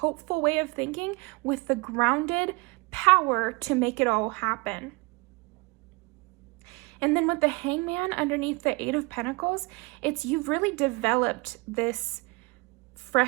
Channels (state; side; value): quieter; left; 27.0 dB